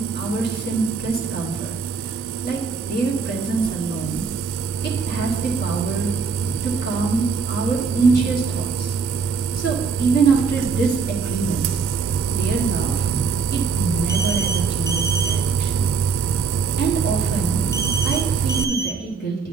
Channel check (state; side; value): quieter; left; 5.3 dB